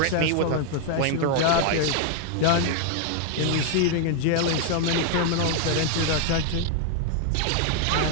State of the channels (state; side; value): different; both; correlation 0.00